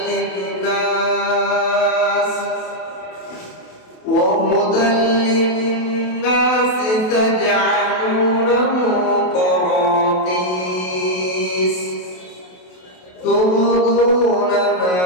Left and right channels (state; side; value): late; right; 28 ms